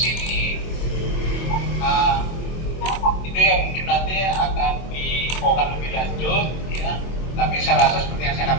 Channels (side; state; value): right; late; 24 ms